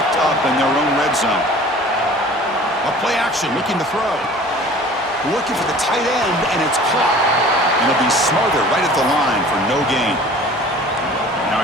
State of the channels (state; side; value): normal; both; correlation 0.46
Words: up in their own red zone. A play action looking to throw. Looking for the tight end, and it's caught. And it'll be smothered right at the line for no gain. Now